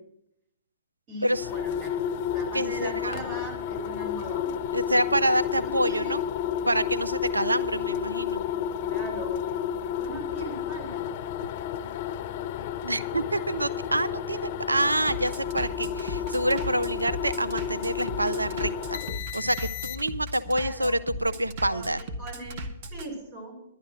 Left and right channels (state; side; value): inverted; both; correlation -0.58